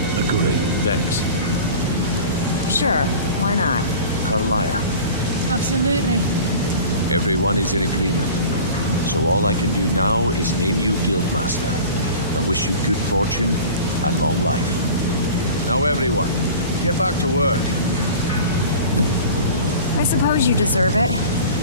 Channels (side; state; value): both; inverted; correlation -0.39